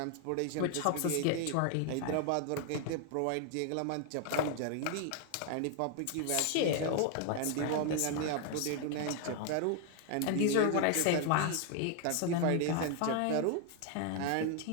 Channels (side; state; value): both; different; correlation 0.00